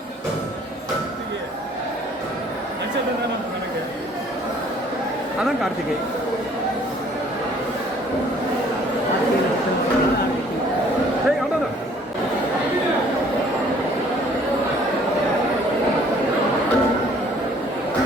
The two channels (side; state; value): both; normal; correlation 0.58